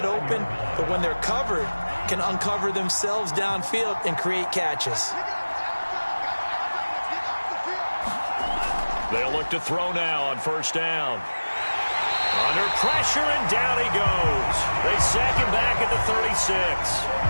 open, but when they're covered, can uncover themselves downfield and create catches. They'll look to throw now on first down. Under pressure, and down he goes. They sack him back at the 36.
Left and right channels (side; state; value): both; inverted; correlation -1.00